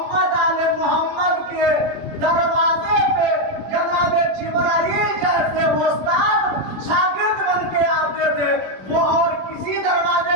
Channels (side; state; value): left; late; 21 ms